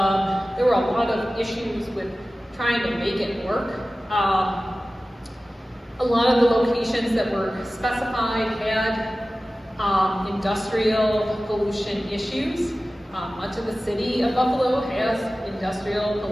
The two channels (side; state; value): both; normal; correlation 0.96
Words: there were a lot of issues with trying to make it work. A lot of the locations that were specified had industrial pollution issues. Much of the city of Buffalo has industrial